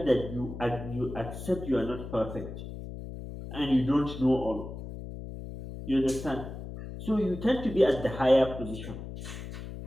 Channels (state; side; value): noise; left; hum, 10 dB below the sound